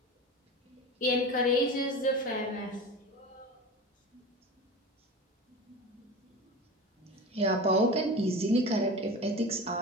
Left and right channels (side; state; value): both; normal; correlation 0.31